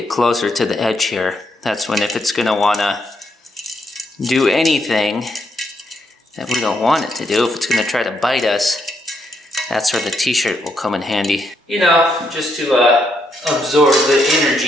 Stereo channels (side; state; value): both; normal; correlation 0.77